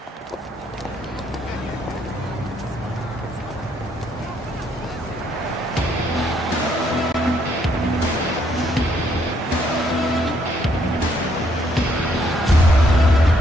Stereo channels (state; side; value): normal; both; correlation 0.70